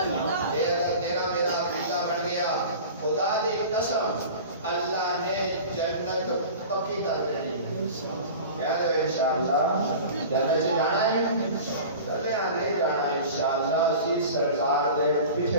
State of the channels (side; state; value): both; inverted; correlation -0.37